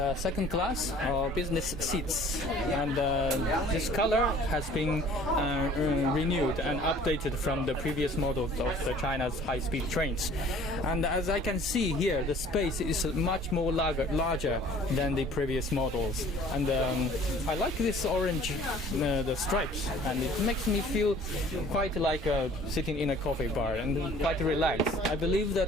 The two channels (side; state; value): both; normal; correlation 0.51